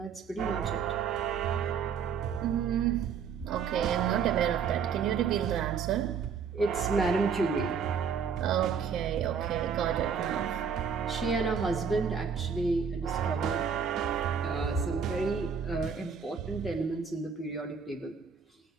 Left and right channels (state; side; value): quieter; left; 6.5 dB